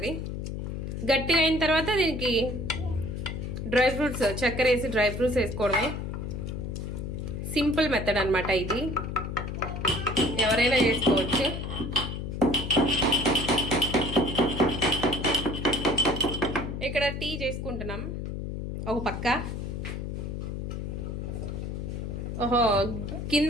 గట్టిగా అయిన తర్వాత దీనికి డ్రై ఫ్రూట్స్ చక్కెర వేసి డ్రై ఫ్రూట్స్ వేసుకోవడమే. సింపుల్ మెథడ్ అనమాట ఇది, ఎవరైనా చేసుకోవచ్చు. ఇక్కడ టీ చేసుకుంటున్నాం ఒక పక్క. ఓహో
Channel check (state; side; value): noise; left; hum, 5 dB below the sound